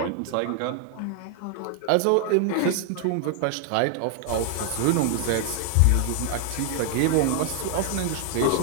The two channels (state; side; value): different; both; correlation 0.00